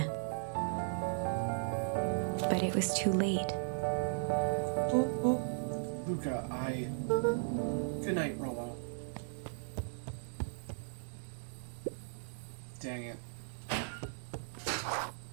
But it was too late. Luca, Good night, Rollo. Dang it.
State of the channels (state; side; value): silent; left; digital silence